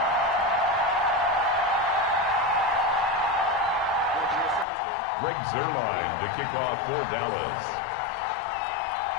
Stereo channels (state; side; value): drops out; right; at 4.7 s